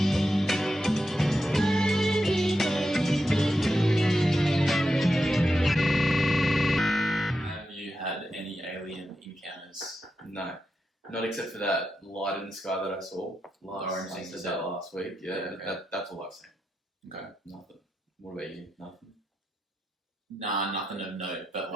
Have you had any alien encounters? No. Not except for that light in the sky that I saw last week. Yeah, okay. That's all I've seen. Okay. Nothing. What about you? Nothing? Nah, nothing of note. But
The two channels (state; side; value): normal; both; correlation 0.87